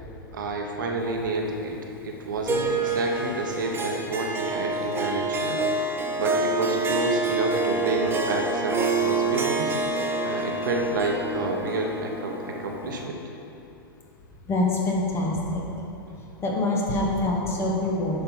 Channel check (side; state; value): both; normal; correlation 0.09